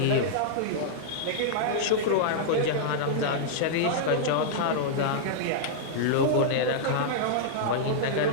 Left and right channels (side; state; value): both; different; correlation -0.02